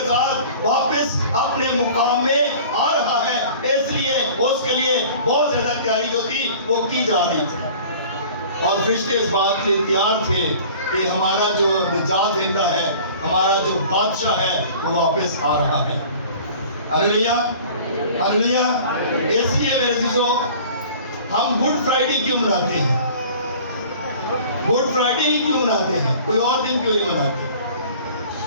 ساتھ واپس اپنے مقام میں آ رہا ہے، اس لیے اس کے لیے بہت زیادہ تیاری جو تھی وہ کی جا رہی تھی، اور فرشتے اس بات کے لیے تیار تھے کہ ہمارا جو نجات دہندہ ہے، ہمارا جو بادشاہ ہے وہ واپس آ رہا ہے۔ ہلیلویا ہلیلویا۔ اس لیے میرے عزیزو ہم گڈ فرائیڈے کیوں مناتے ہیں؟ گڈ فرائیڈے ہی کیوں مناتے ہیں؟ کوئی اور دن کیوں نہیں مناتے؟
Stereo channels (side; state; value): both; inverted; correlation -0.45